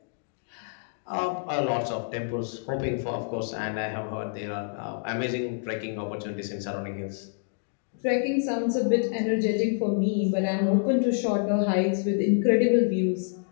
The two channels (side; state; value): right; silent; digital silence